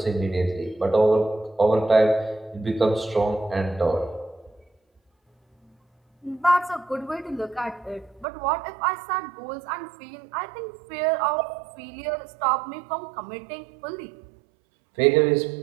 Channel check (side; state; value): left; drops out; at 8.2 s